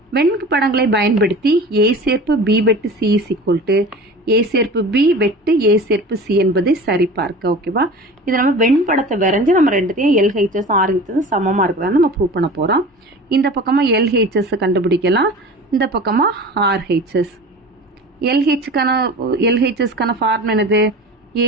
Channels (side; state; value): both; normal; correlation 0.37